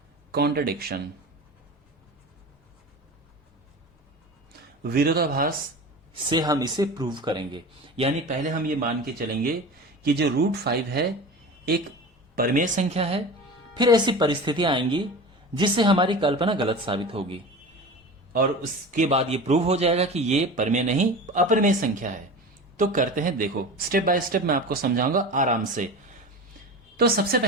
कॉन्ट्रडिक्शन, विरोधाभास से हम इसे प्रूव करेंगे। यानी पहले हम ये मान के चलेंगे कि जो √5 है एक परिमेय संख्या है। फिर ऐसी परिस्थितियां आएंगी जिससे हमारी कल्पना गलत साबित होगी और उसके बाद ये प्रूव हो जाएगा कि ये परिमेय नहीं अपरिमेय संख्या है। तो करते हैं, देखो स्टेप बाय स्टेप मैं आपको समझाऊंगा आराम से। तो सबसे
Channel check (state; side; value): normal; both; correlation 0.32